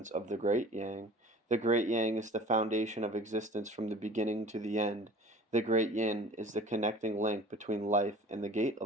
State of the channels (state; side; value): normal; both; correlation 0.44